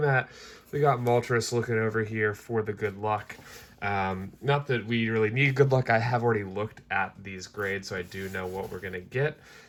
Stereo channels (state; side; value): identical; both; correlation 1.00